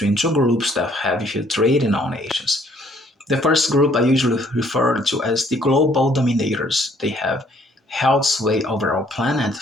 two groups that have infiltrated our nations. The first group I usually refer to as the global dominators. They have held sway over our planet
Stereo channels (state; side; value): normal; both; correlation 0.63